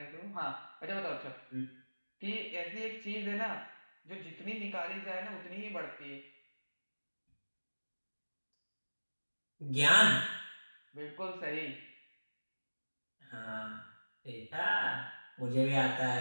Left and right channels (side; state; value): both; inverted; correlation -1.00